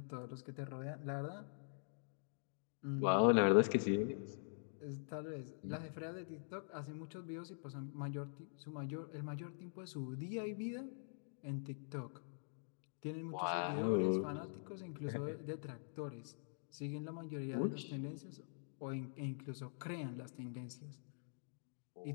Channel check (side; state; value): right; silent; digital silence